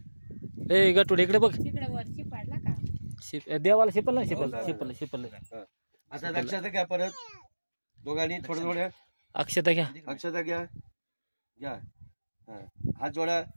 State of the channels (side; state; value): both; inverted; correlation -1.00